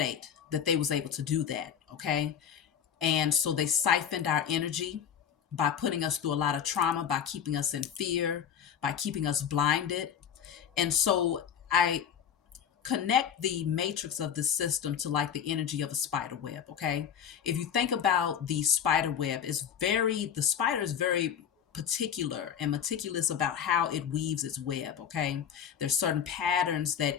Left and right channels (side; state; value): right; quieter; 8.4 dB